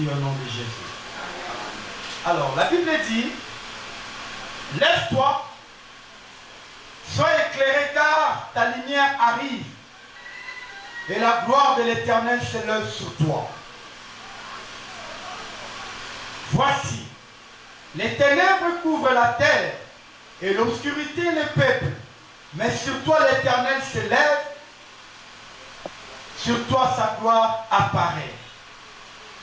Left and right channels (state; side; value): identical; both; correlation 1.00